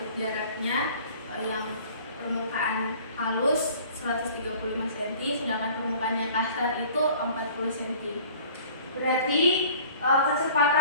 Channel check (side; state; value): both; inverted; correlation -0.49